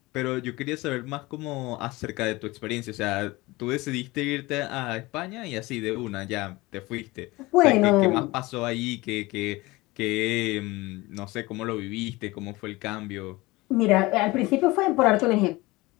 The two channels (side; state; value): right; quieter; 21.4 dB